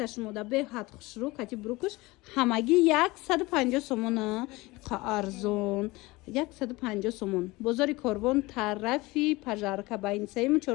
шумода беҳад хушрӯ кати бурукуш ҳамагӣ 150 сомона арзон 150 сомон бозори Корвон тарафи пажарка байни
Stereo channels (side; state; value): right; quieter; 21.7 dB